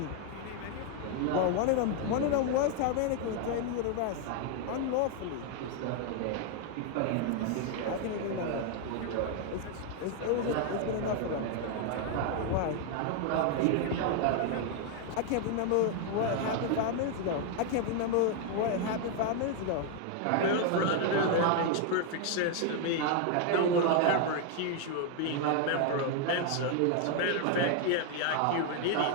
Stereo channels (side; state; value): both; different; correlation 0.00